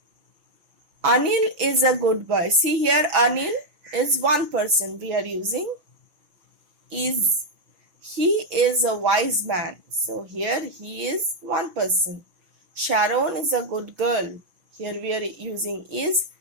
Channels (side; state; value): left; late; 6.2 ms